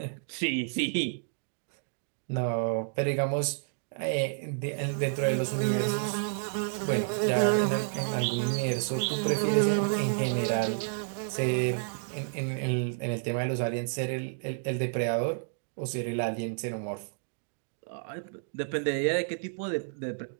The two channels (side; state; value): left; silent; digital silence